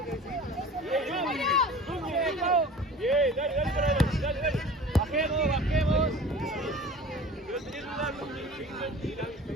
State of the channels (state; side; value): normal; both; correlation 0.41